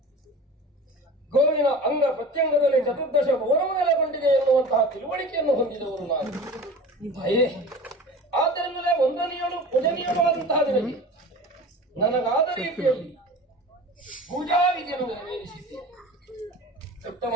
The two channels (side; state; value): both; normal; correlation 0.37